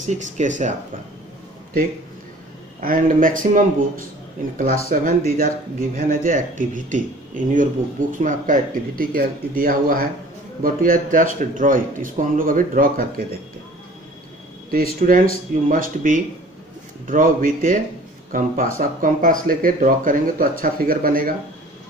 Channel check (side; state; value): both; normal; correlation 0.48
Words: केस है आपका, ठीक। And maximum books in class 7 these are given as a activity in your books में आपका एक्टिविटी दिया हुआ है, but we are just draw it. इसको हम लोग अभी ड्रॉ करके देखते हैं। तो students you must be draw with a compass. आप कंपास लेके ड्रॉ करेंगे तो अच्छा फिगर बनेगा,